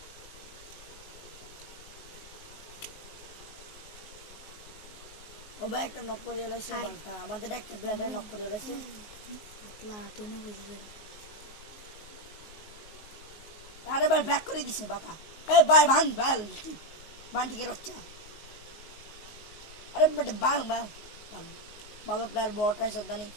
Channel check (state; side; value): late; right; 19 ms